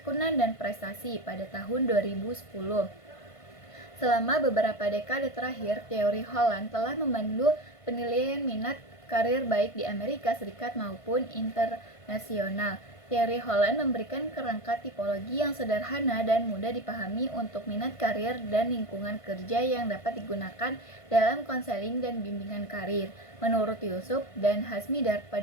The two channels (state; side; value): late; right; 1.5 ms